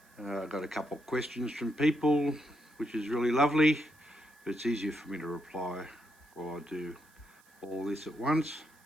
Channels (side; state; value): right; noise; hiss, 29 dB below the sound